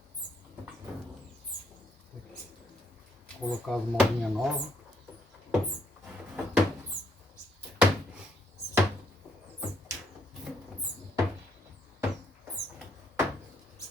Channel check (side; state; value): both; normal; correlation 0.71